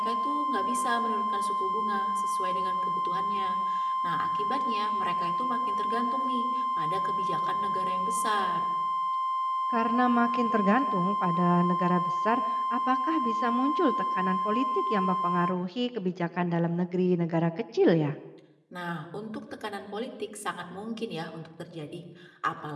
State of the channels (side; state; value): both; identical; correlation 1.00